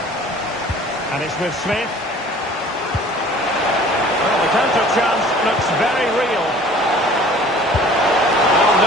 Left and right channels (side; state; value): both; normal; correlation 0.49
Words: And it's with Smith. Well, the counter chance looks very real.